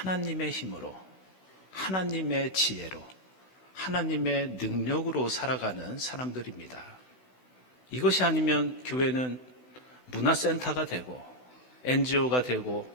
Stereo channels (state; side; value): late; right; 16 ms